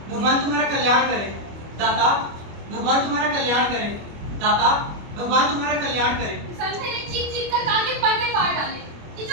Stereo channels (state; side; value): late; left; 25 ms